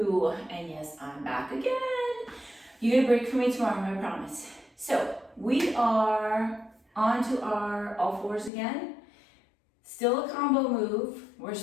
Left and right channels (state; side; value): drops out; right; at 8.5 s